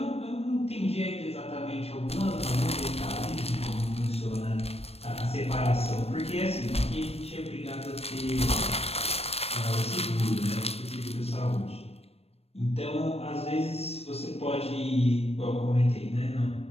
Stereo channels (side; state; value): right; late; 0.29 ms